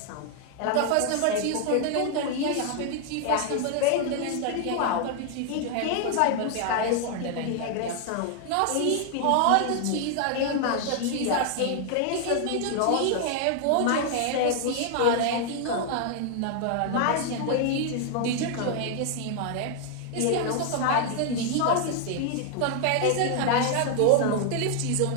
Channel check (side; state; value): both; different; correlation 0.00